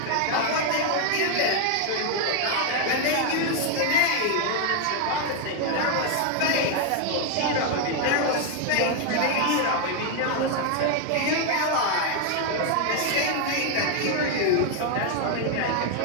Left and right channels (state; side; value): different; both; correlation 0.01